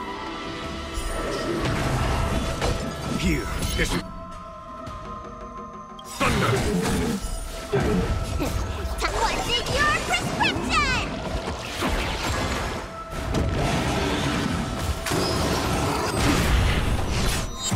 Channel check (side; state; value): both; identical; correlation 1.00